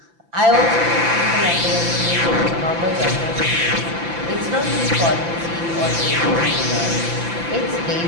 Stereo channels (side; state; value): left; late; 5.9 ms